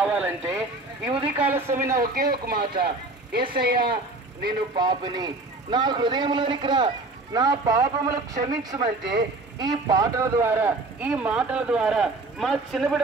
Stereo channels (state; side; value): quieter; left; 3.2 dB